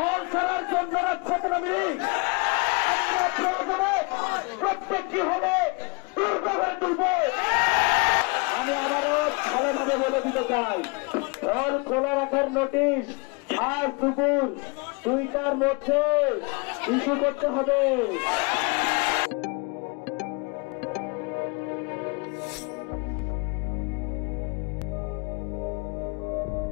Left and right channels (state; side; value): quieter; right; 30.2 dB